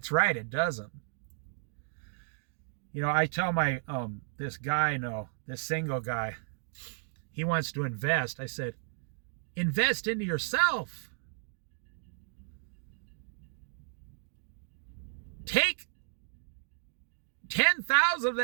right, it doesn't. You know, I tell my, this guy, this single guy, he wants to invest. I said, invest into yourself. Take 10,000 of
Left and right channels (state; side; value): silent; left; digital silence